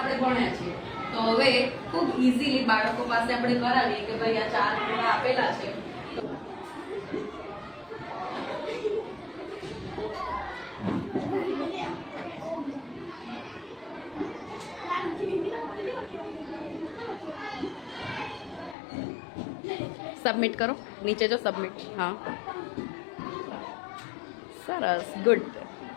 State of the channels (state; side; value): drops out; right; at 18.8 s